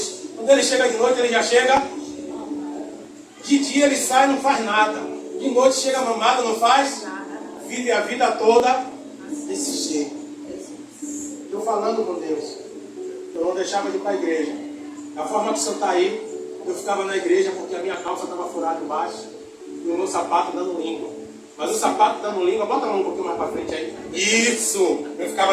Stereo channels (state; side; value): identical; both; correlation 1.00